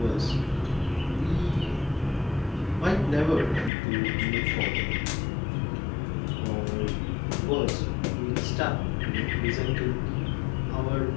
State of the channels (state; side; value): drops out; right; at 3.7 s